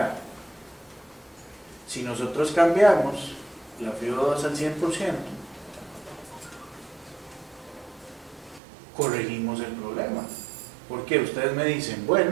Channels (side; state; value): left; drops out; at 8.6 s